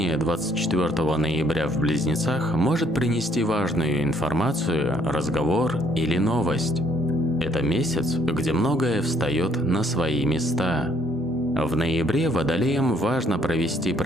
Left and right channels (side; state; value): both; normal; correlation 0.66